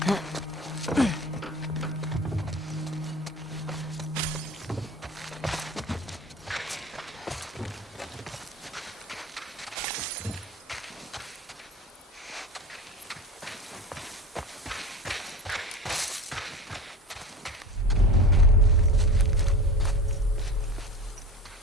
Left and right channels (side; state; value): both; normal; correlation 0.32